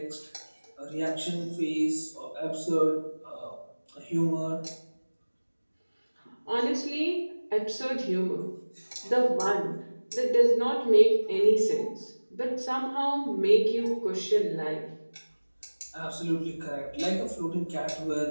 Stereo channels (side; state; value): both; inverted; correlation -1.00